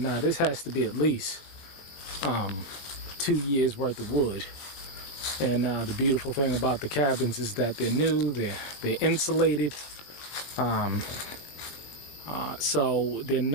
Now this has to be at least 2 years worth of wood. And the beautiful thing about the cabins is that they're new, they're insulated, so they're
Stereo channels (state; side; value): late; right; 20 ms